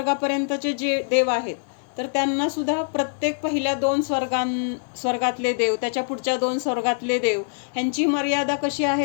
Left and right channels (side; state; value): right; silent; 63 dB below the other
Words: जे देव आहेत तर त्यांना सुद्धा प्रत्येक पहिल्या 2 स्वर्गातले देव, त्याच्या पुढच्या 2 स्वर्गातले देव ह्यांची मर्यादा कशी